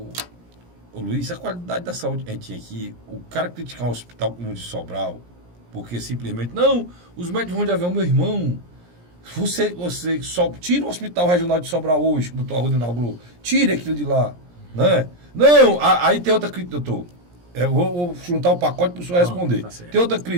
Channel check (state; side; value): late; left; 17 ms